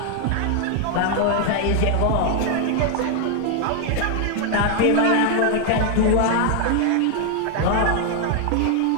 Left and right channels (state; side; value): different; both; correlation 0.00